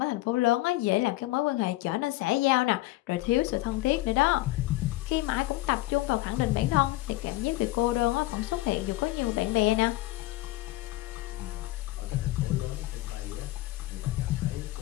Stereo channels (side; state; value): right; quieter; 18.2 dB